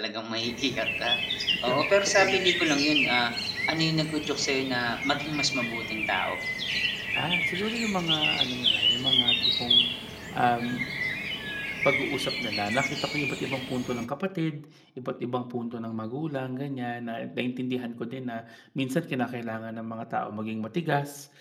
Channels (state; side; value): identical; both; correlation 1.00